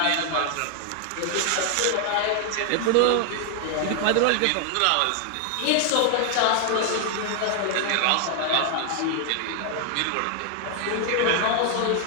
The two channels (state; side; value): different; both; correlation 0.00